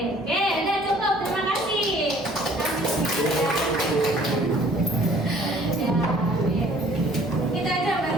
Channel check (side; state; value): both; normal; correlation 0.55